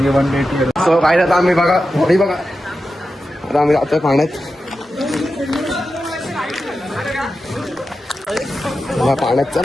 सो काय आता आम्ही बघा होडी बघा आता आम्ही जातोय पाण्यात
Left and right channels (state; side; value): normal; both; correlation 0.91